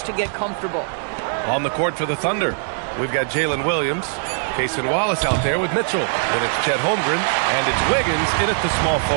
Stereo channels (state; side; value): silent; left; 59 dB below the other